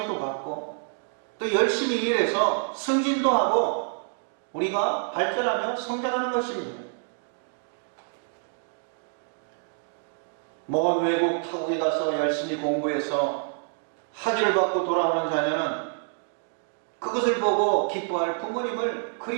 받고 또 열심히 일해서 승진도 하고 우리가 발전하며 성장하는 것입니다. 먼 외국 타국에 가서 열심히 공부해서 학위를 받고 돌아오는 자녀는 그것을 보고 기뻐할 부모님을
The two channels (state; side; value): silent; left; 60 dB below the other